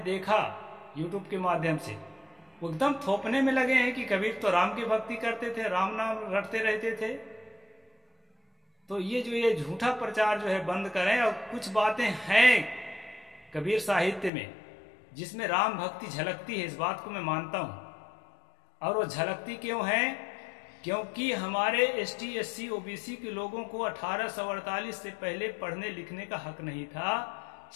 यूट्यूब के माध्यम से, वो एकदम थोपने में लगे हैं कि कबीर तो राम की भक्ति करते थे, राम नाम रटते रहते थे। तो ये झूठा प्रचार जो है बंद करें। और कुछ बातें हैं कबीर साहित्य में जिसमें राम भक्ति झलकती है, इस बात को मैं मानता हूं। और वो झलकती क्यों है? क्योंकि हमारे ST SC OBC के लोगों को 1848 से पहले पढ़ने लिखने का हक नहीं था।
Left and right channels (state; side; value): drops out; right; at 14.3 s